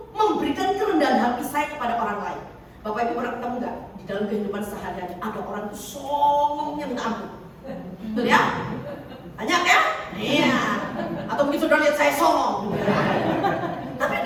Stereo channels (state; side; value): identical; both; correlation 1.00